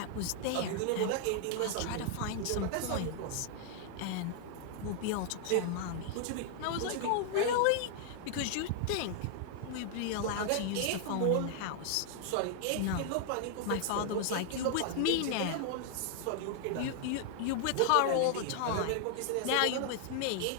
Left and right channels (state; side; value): different; both; correlation 0.00